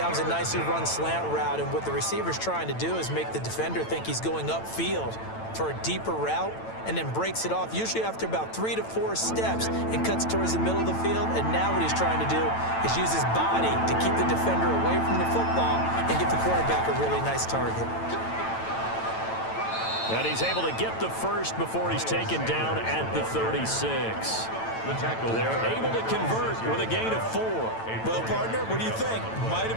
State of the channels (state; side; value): late; right; 9.0 ms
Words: was a nicely run slant route, and what the receiver's trying to do is make the defender think he's going upfield for a deeper route, and then breaks it off, usually after about 3 to 4 steps, and cuts towards the middle of the field. And now what he's trying to do is use his body to keep the defender away from the football and give the quarterback a really nice target. And he's able to get the first before he's taken down at the 36. The tackle. They're able to convert with a gain of 4. Well, partner, what do you think? Might